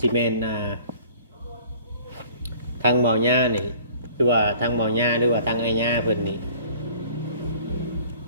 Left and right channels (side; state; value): both; inverted; correlation -0.52